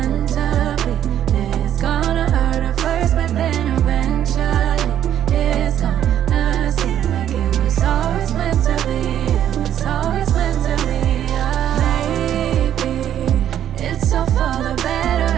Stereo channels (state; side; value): quieter; left; 10.7 dB